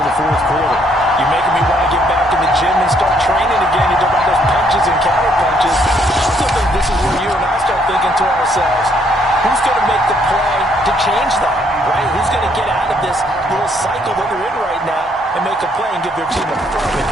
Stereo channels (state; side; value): normal; both; correlation 0.68